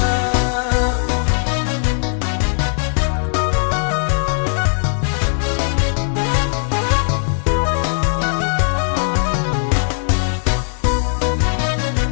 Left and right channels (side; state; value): right; silent; digital silence